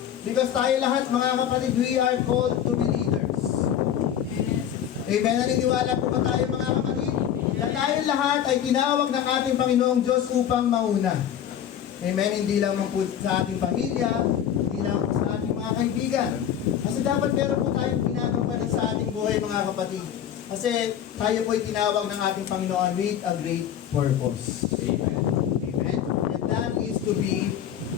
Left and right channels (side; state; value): right; quieter; 9.7 dB